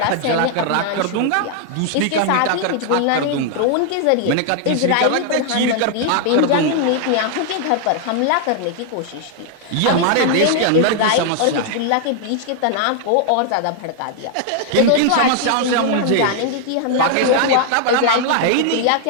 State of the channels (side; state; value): both; different; correlation 0.00